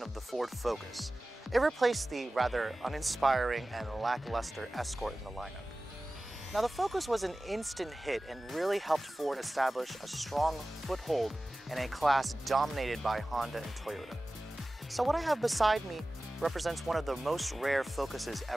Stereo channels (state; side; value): normal; both; correlation 0.97